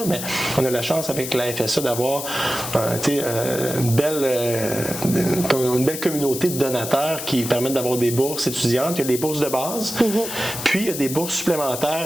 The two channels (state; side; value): noise; left; hiss, 7 dB below the sound